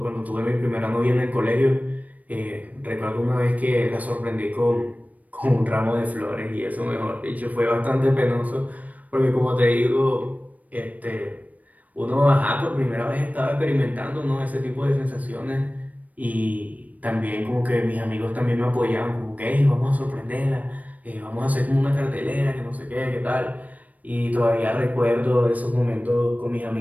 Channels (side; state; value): left; late; 0.074 ms